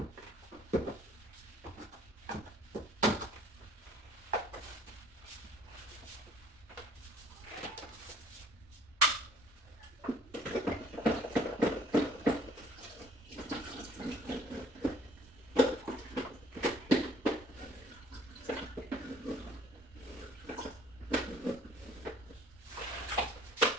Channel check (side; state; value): both; normal; correlation 0.56